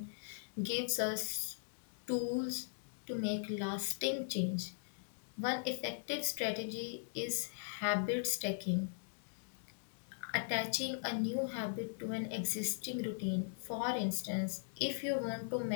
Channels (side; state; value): right; silent; digital silence